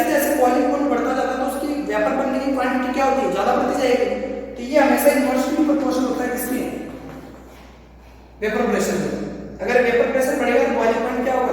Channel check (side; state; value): both; identical; correlation 1.00